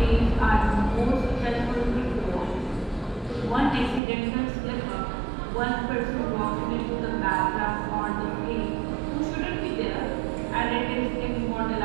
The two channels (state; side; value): drops out; left; at 4.0 s